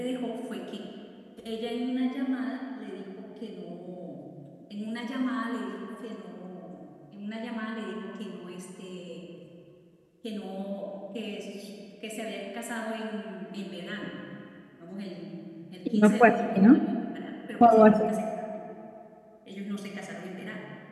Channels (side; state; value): both; identical; correlation 1.00